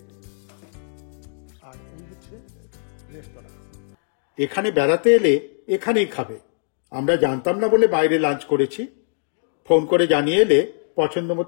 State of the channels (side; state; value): right; silent; digital silence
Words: আর এই হচ্ছে রেস্তোরাঁ। এখানে বেড়াতে এলে এখানেই খাবে, আমরা জানতাম না বলে বাইরে লাঞ্চ করেছি। ফোন করে জানিয়ে এলে পছন্দ